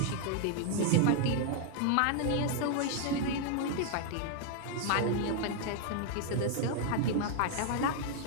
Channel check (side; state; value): both; different; correlation 0.00